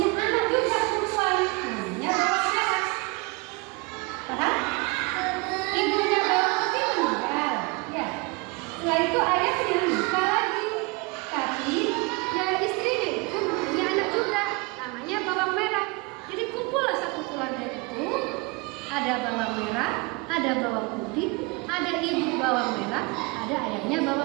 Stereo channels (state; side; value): quieter; left; 27.4 dB